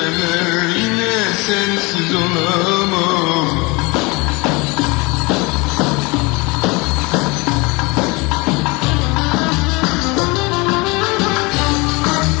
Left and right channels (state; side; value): quieter; right; 26.1 dB